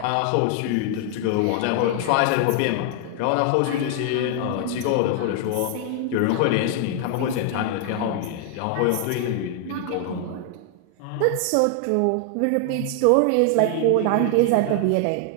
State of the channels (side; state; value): both; different; correlation 0.00